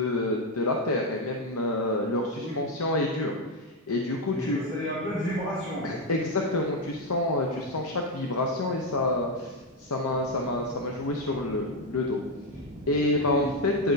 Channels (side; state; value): both; normal; correlation 0.06